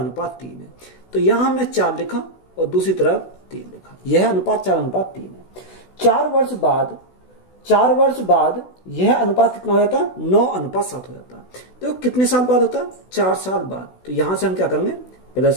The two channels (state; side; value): late; right; 16 ms